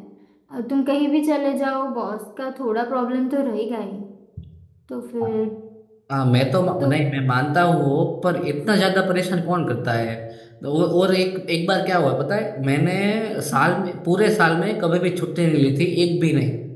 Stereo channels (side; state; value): both; identical; correlation 1.00